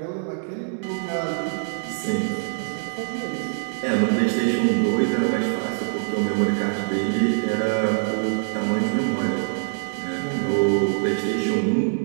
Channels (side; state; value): left; silent; digital silence